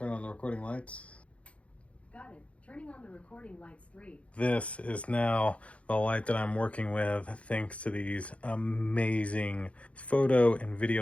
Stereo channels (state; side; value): late; right; 0.063 ms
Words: Turn on the recording lights. Got it. Turning on the recording lights 3. This is now the light that I'm working with thanks to these amazing photo and